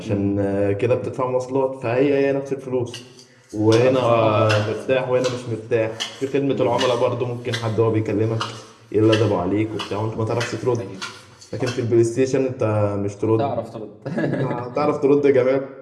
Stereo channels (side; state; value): both; identical; correlation 1.00